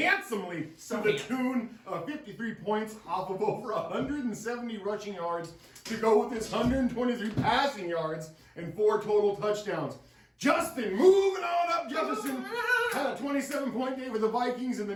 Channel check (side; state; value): both; identical; correlation 1.00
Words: to the tune of 53 points off of over 170 rushing yards to go with his 123 passing yards and 4 total touchdowns. Justin, moving on up, Jefferson had a 27-point day with the Vikings, and the